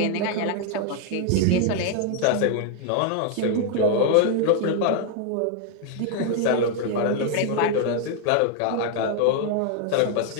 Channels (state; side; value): different; both; correlation 0.00